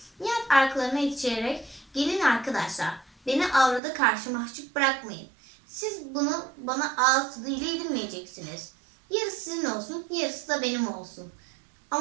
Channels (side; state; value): left; drops out; at 3.8 s